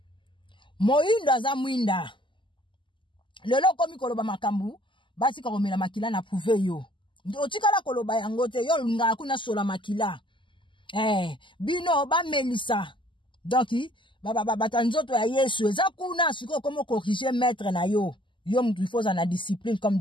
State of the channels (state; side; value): late; right; 0.24 ms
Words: moindo aza mwinda lelo komi koloba makambu batika komela makila na prouve yo otikala koloba yango te yo ngala kuna sola makila bino ba melisa donc bata nzoto ya Yesu eza kuna siko komo corriger maître na yo mtu faut na discipline comme